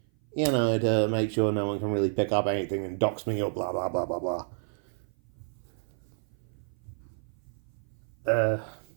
to make sure no one can really pick up anything and dox me or blah, blah, blah, blah, blah.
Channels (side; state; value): left; silent; 55 dB below the other